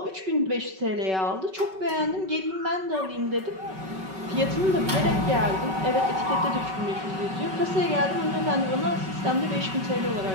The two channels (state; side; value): late; left; 5.3 ms